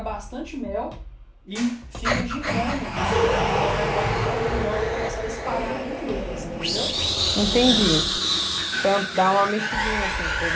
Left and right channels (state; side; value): identical; both; correlation 1.00